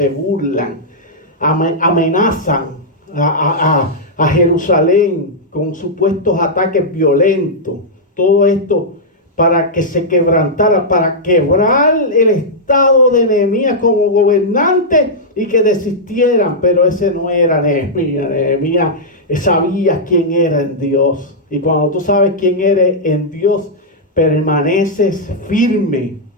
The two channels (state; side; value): normal; both; correlation -0.08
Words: burlan, amenazan a Jerusalén con supuestos ataques violentos. Todo esto para que se quebrantara, para quebrar el estado de Nehemías como gobernante y que desistieran. Pero ese no era Nehemías. Nehemías sabía quién era en Dios. Y cuando tú sabes quién eres en Dios, permaneces firme.